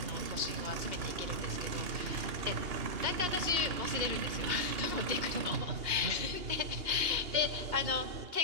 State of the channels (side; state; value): left; late; 2.8 ms